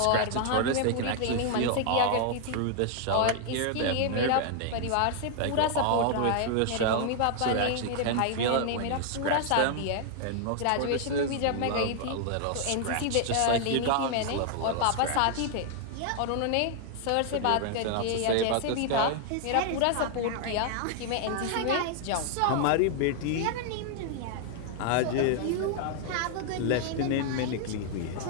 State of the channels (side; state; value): both; different; correlation 0.00